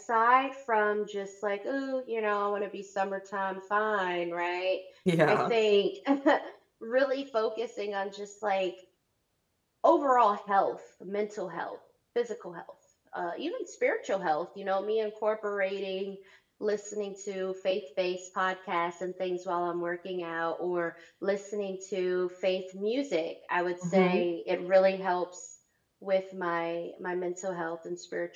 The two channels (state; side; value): identical; both; correlation 1.00